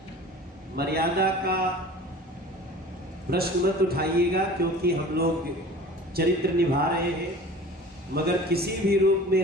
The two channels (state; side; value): normal; both; correlation 0.41